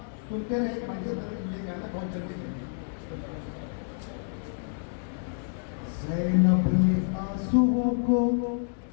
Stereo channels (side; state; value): right; silent; digital silence